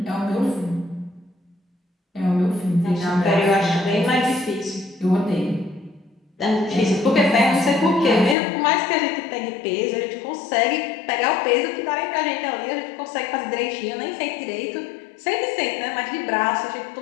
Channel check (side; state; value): right; drops out; at 8.3 s